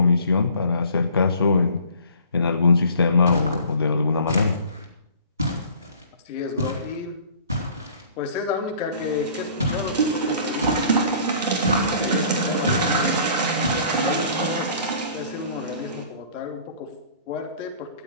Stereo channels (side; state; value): both; inverted; correlation -0.50